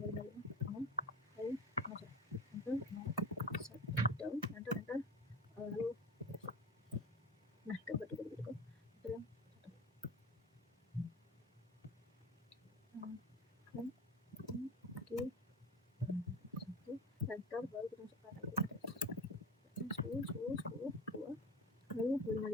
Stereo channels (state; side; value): normal; both; correlation 0.31